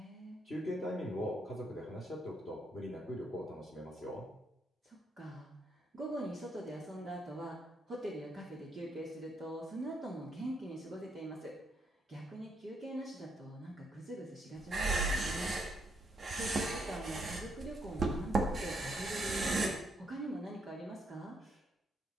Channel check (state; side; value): normal; both; correlation 0.75